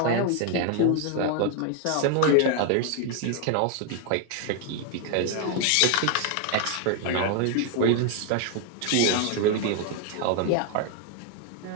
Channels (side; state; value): both; different; correlation 0.01